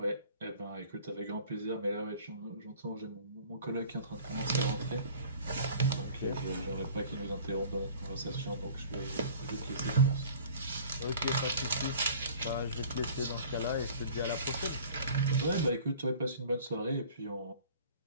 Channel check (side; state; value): both; inverted; correlation -0.47